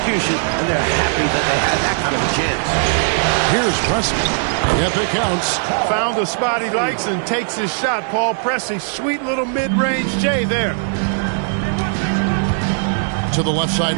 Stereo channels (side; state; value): left; silent; 61 dB below the other